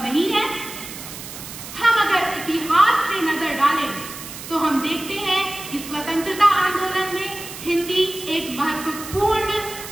नहीं है। हम अगर इतिहास में नजर डालें तो हम देखते हैं कि स्वतंत्रता आंदोलन में हिंदी एक महत्वपूर्ण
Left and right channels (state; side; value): noise; right; hiss, 12 dB below the sound